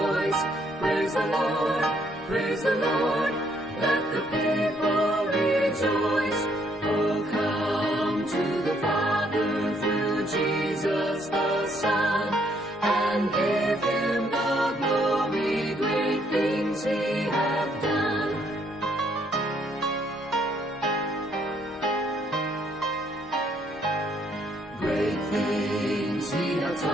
Praise the Lord, praise the Lord, let the people rejoice. Oh, come to the Father through Jesus the Son, and give him the glory, great things he hath done. Great things he hath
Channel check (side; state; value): both; normal; correlation 0.70